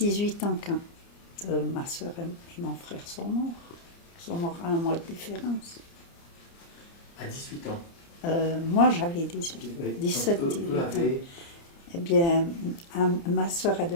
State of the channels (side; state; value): right; late; 29 ms